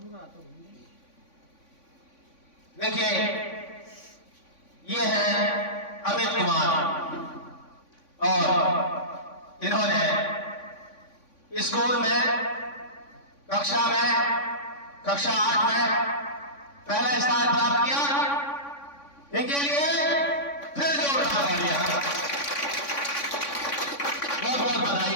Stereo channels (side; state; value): right; late; 3.5 ms